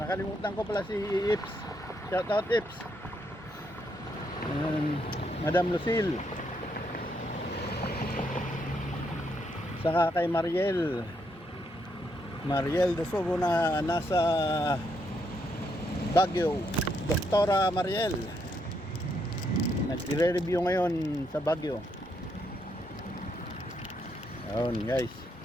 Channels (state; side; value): normal; both; correlation 0.76